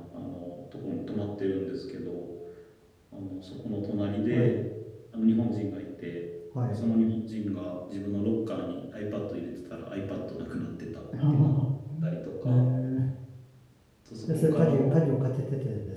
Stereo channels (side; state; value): both; identical; correlation 1.00